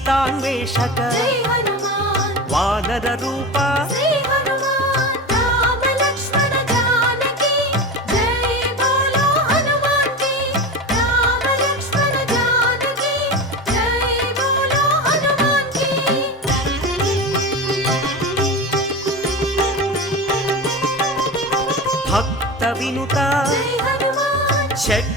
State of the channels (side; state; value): both; normal; correlation 0.26